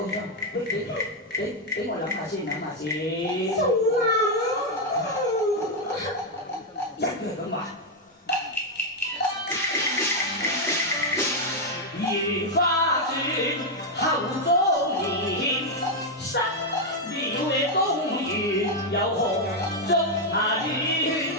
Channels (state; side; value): normal; both; correlation 0.02